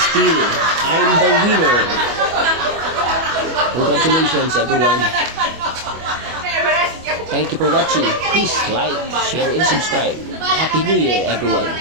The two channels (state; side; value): late; left; 25 ms